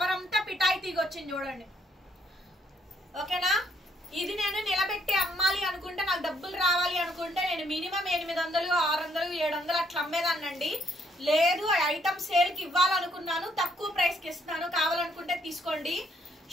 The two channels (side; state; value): both; normal; correlation 0.70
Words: అంతా పిటాయి తీగ వచ్చింది చూడండి ఓకేనా. ఇది నేను నిలబెట్టి అమ్మాలి అనుకుంటే, నాకు డబ్బులు రావాలి అనుకుంటే నేను మినిమం 800 600 700 అట్లా అమ్మేదాన్నండి. లేదు ఐటమ్ సేల్ కి ఇవ్వాలనుకున్నాను, తక్కువ ప్రైస్ కి ఇస్తున్నాను, కావాలనుకుంటే తీసుకోండి.